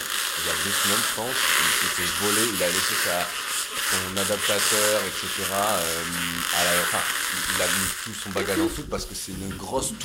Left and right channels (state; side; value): identical; both; correlation 1.00